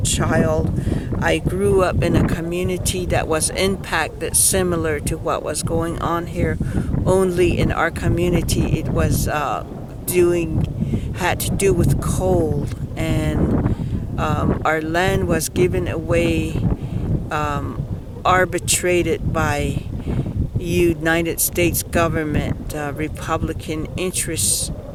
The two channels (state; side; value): identical; both; correlation 1.00